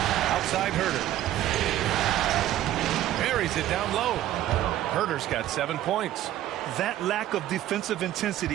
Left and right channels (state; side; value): quieter; left; 13.2 dB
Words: Outside Herter. Buries it down low. Herter's got 7 points. That lack of defensive